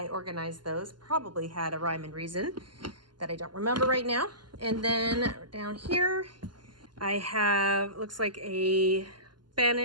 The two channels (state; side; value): late; left; 0.71 ms